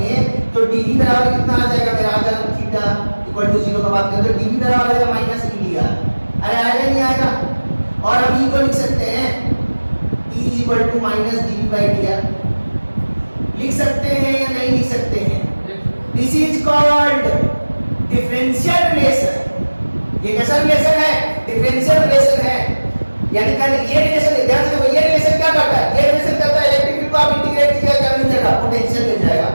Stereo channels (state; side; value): inverted; both; correlation -1.00